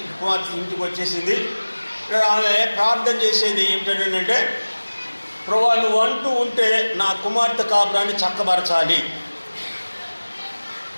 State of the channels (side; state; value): both; inverted; correlation -1.00